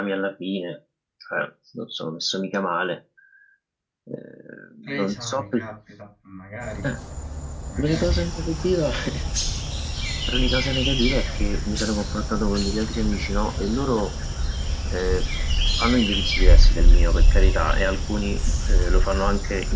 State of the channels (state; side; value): identical; both; correlation 1.00